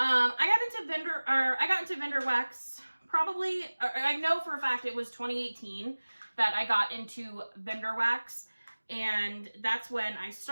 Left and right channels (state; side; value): inverted; both; correlation -1.00